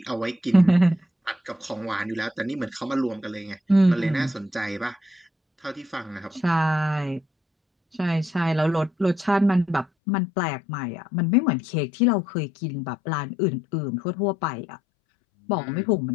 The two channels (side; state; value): right; drops out; at 9.9 s